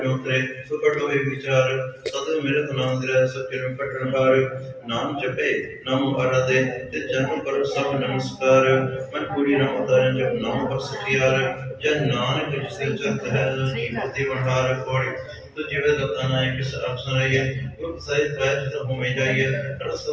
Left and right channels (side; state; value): both; identical; correlation 1.00